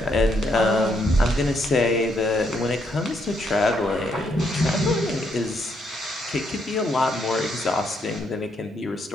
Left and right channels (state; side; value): normal; both; correlation 0.75